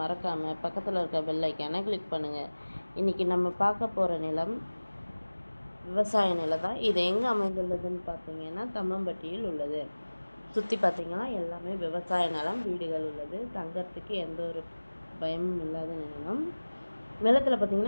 மறக்காமல் பக்கத்தில் இருக்க பெல் ஐக்கானை கிளிக் பண்ணுங்கள். இன்றைக்கி நம்ம பார்க்க போகிற நிலம் விவசாய நிலம் தான். இது எங்கே அமைந்துள்ளதுன்னு பார்த்தீங்கன்னா தம்மம்பட்டியில் உள்ளது. சுற்றி பார்த்திங்கன்னா எல்லாமே விவசாய நிலம், வீடுகள் உள்ளது. தங்கறதுக்கு எந்த ஒரு பயமும் இல்லாத நிலம். நிலத்தில்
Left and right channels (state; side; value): inverted; both; correlation -1.00